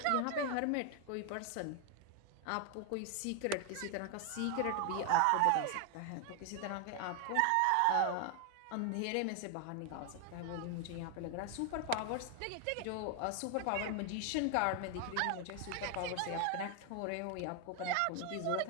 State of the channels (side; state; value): both; different; correlation 0.00